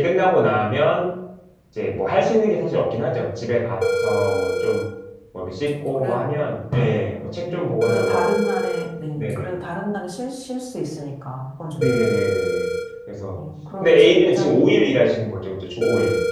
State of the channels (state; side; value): identical; both; correlation 1.00